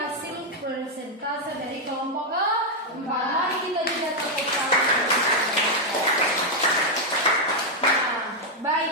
presentasi dari kelompok 4. Mari kita juga tepuk tangan. Nah,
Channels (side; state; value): both; normal; correlation 0.00